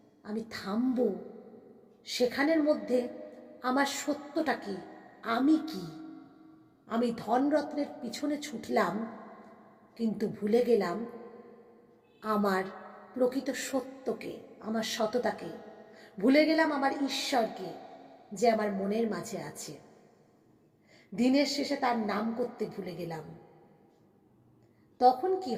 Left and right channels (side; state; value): both; identical; correlation 1.00